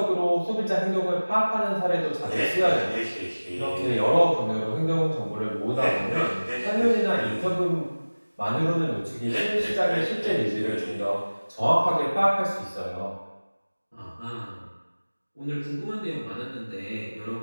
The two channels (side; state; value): both; inverted; correlation -1.00